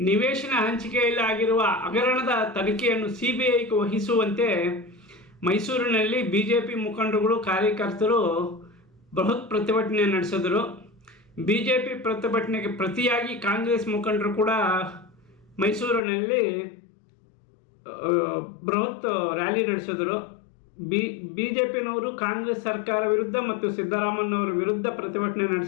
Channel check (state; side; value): drops out; right; at 16.0 s